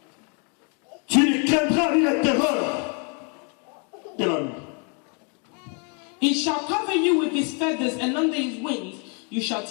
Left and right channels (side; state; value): right; quieter; 37.3 dB